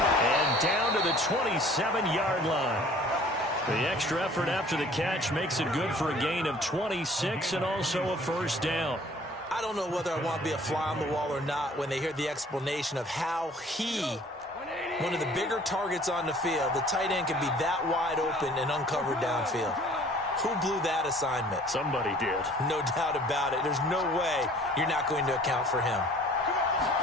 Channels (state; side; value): normal; both; correlation 0.52